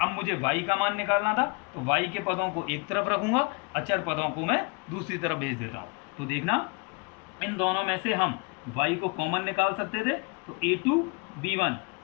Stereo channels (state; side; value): quieter; right; 32.0 dB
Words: अब मुझे y का मान निकालना था तो y के पदों को एक तरफ रखूंगा, अचर पदों को मैं दूसरी तरफ भेज देता हूँ। तो देखना, इन दोनों में से हम y को कॉमन निकाल सकते थे, तो a2b1